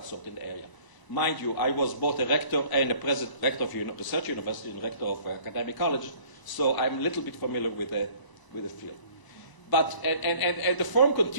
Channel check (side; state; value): right; late; 1.0 ms